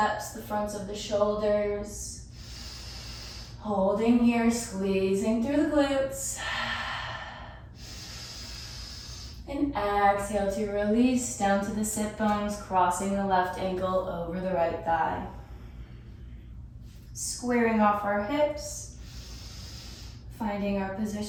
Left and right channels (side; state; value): both; identical; correlation 1.00